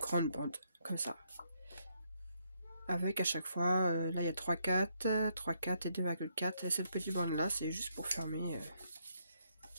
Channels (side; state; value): both; inverted; correlation -0.75